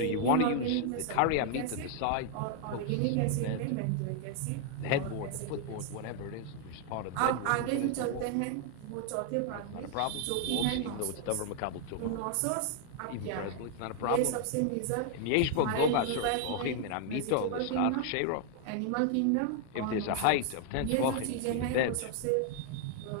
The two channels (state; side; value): different; both; correlation 0.00